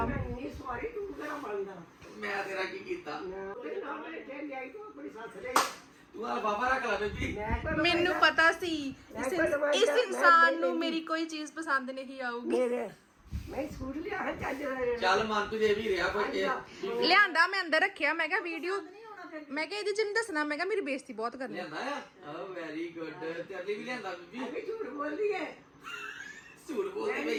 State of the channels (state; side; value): identical; both; correlation 1.00